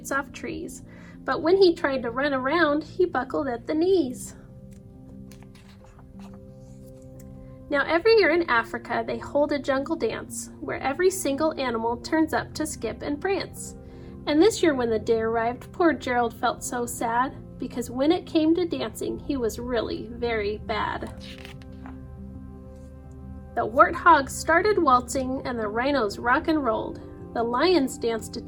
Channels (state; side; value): identical; both; correlation 1.00